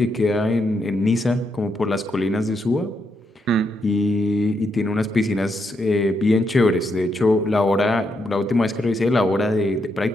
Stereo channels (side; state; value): both; normal; correlation 0.80